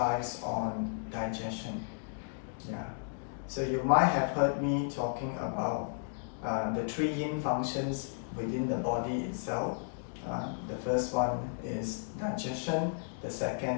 on digestion. So you might have heard me talking about the three yin functions within the body itself. The first one is digestion, the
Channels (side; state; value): right; silent; digital silence